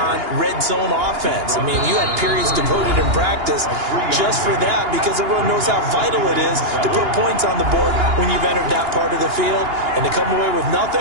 red zone offense. I mean, you had periods devoted in practice just for that because everyone knows how vital it is to put points on the board when you've entered that part of the field. And to come away with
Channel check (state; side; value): late; left; 2.9 ms